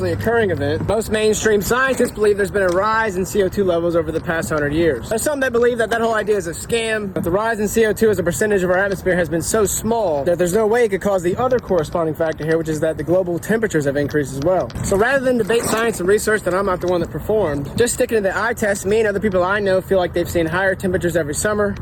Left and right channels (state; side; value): identical; both; correlation 1.00